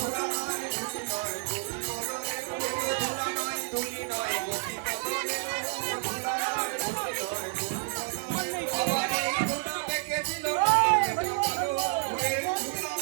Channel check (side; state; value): left; silent; 58 dB below the other